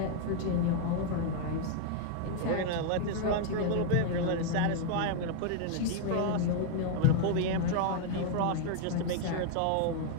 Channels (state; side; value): different; both; correlation 0.00